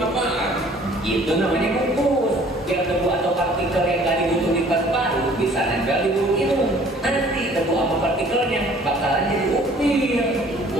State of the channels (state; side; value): normal; both; correlation 0.54